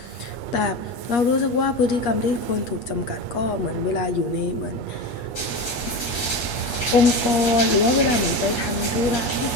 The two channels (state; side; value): late; right; 8.4 ms